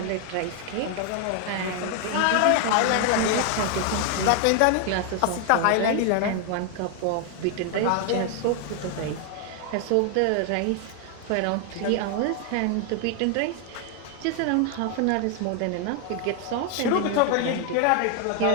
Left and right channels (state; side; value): different; both; correlation 0.00